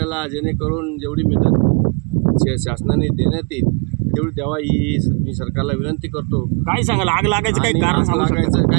जेणेकरून जेवढी मदत शासनाने देण्यात येईल तेवढी द्यावा ही मी सरकारला विनंती करतो। काय सांगाल, आग लागायचं काही कारण लागायचं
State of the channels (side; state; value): left; quieter; 34.0 dB